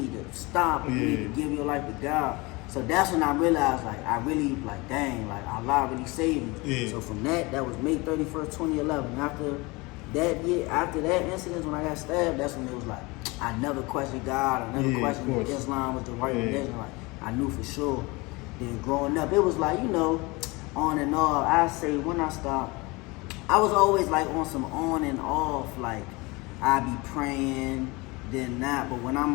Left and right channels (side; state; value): right; quieter; 24.7 dB